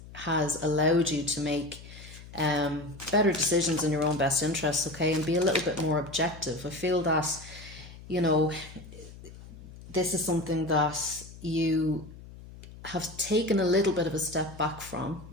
has allowed you to make better decisions in your own best interests, okay, and be a little bit more objective. I feel that, you know, this is something that you have taken a little bit of a step back from,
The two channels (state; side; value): noise; left; hum, 17 dB below the sound